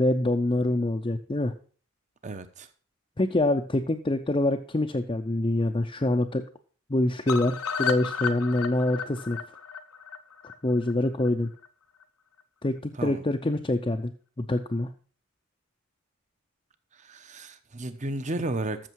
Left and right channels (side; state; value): both; normal; correlation 0.75